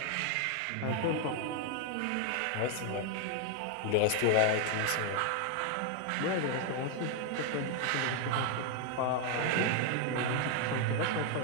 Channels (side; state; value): both; different; correlation 0.01